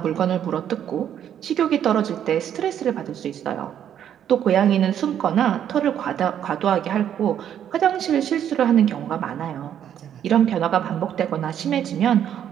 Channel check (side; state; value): left; quieter; 9.8 dB